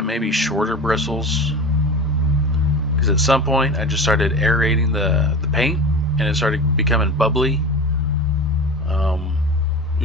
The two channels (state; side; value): normal; both; correlation 0.30